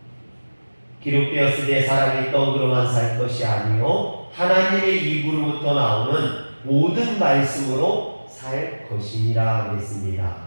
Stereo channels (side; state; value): both; inverted; correlation -1.00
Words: 기록되었으되 사람이 떡으로만 살 것이 아니요 하나님의 입으로부터 나오는 모든 말씀으로 살 것이니라 그랬습니다.